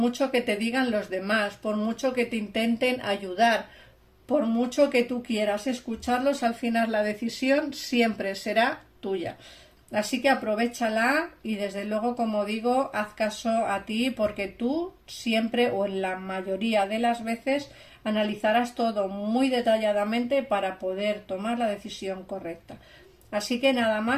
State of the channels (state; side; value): identical; both; correlation 1.00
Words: que te digan los demás, por mucho que te intenten ayudar, por mucho que tú quieras escucharlos, al final la decisión siempre será tuya. Así que aprovéchala y desde luego, como digo, haz caso a ti, porque tú siempre o en la mayoría de las veces analizarás todo muy detalladamente para poder tomar la decisión correcta. Así que nada